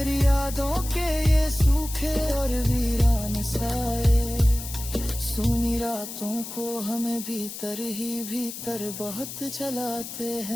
यादों के ये सूखे और वीरान साए सूनी रातों को हमें भीतर ही भीतर बहुत जलाते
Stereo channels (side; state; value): left; noise; hiss, 10 dB below the sound